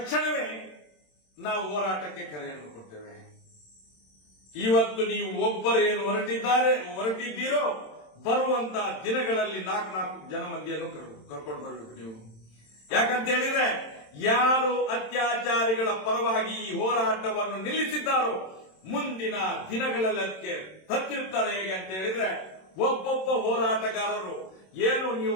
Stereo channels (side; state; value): right; late; 27 ms